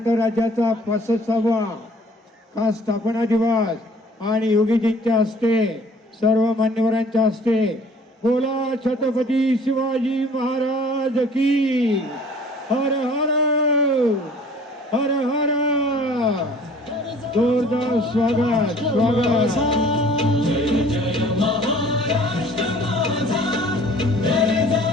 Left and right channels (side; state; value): both; normal; correlation 0.52